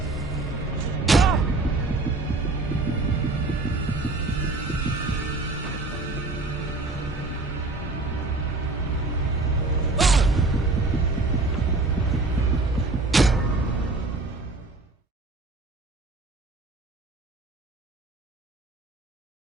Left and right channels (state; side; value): quieter; left; 3.2 dB